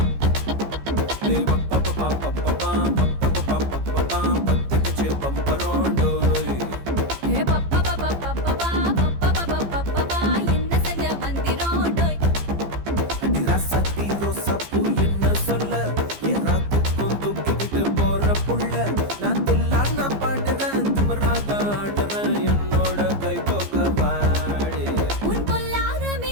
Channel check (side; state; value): left; late; 15 ms